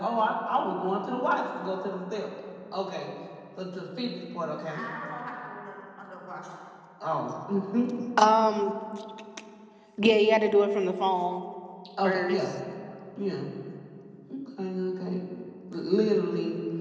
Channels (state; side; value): identical; both; correlation 1.00